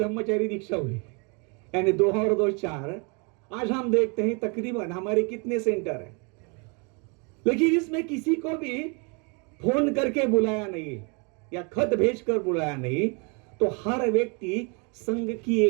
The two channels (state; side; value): quieter; left; 33.4 dB